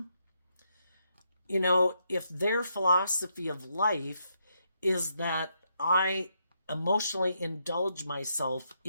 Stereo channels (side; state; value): both; inverted; correlation -0.78